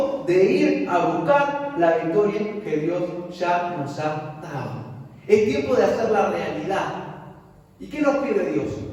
de ir a buscar la victoria que Dios ya nos ha dado. Es tiempo de hacerla realidad. ¿Y qué nos pide Dios?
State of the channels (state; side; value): identical; both; correlation 1.00